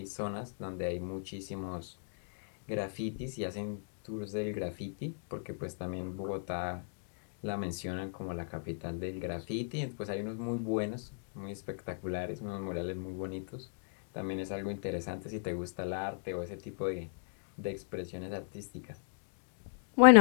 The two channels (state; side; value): silent; right; digital silence